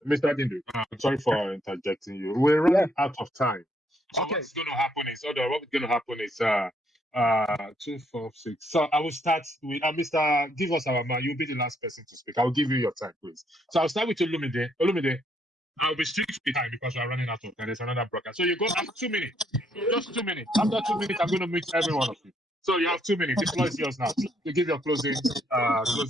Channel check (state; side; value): normal; both; correlation 0.71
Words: Mr. Dindu, I'm sorry for interjecting you. We're running out of time. So what's going to happen is, what's going to happen is 2, 4, 6. So I will start with Mr. Give us our man. You'll be the last person to speak. I'll give you your time, please. So I'll start with Olumide. Olumide, I'll be strict with time because we're running out of time. There's another broadcast. So you go have 2 minutes. Just 2 minutes. After 2 minutes, I'm going to mute every one of you. So you have 2 minutes. The floor is yours now. You give your closing